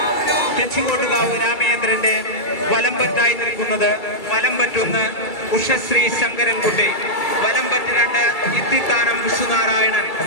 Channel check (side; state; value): right; late; 2.3 ms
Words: തെച്ചിക്കോട്ടുകാവ് രാമചന്ദ്രന്റെ വലംപറ്റായി നിൽക്കുന്നത് വലംപറ്റൊന്ന് ഉഷശ്രീ ശങ്കരൻകുട്ടി, വലംപറ്റ് 2 ഇത്തിത്താനം വിഷ്ണുനാരായണൻ,